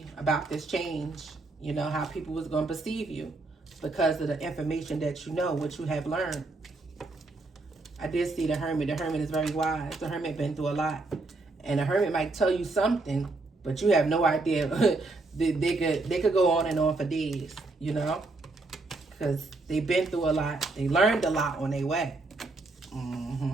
about this change. You know, how people was going to perceive you because of the information that you know, what you have learned. I did see the Hermit. The Hermit is very wise. The Hermit been through a lot. And the Hermit might tell you something, but you have no idea. they could go on and on for days, you know, because they've been through a lot. They learned a lot on their way.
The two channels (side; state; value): left; quieter; 3.3 dB